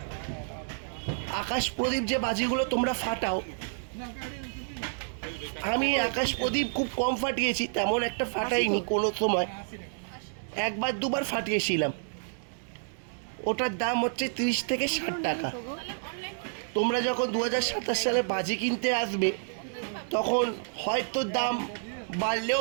আকাশ প্রদীপ যে বাজিগুলো তোমরা ফাটাও, আমি আকাশ প্রদীপ খুব কম ফাটিয়েছি, তেমন একটা ফাটাইনি কোনো সময়, একবার দুবার ফাটিয়েছিলাম। ওটার দাম হচ্ছে 30 থেকে 60 টাকা। তোমরা যখন 2027 সালে বাজি কিনতে আসবে তখন হয়তো দাম বাড়লেও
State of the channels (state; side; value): silent; left; digital silence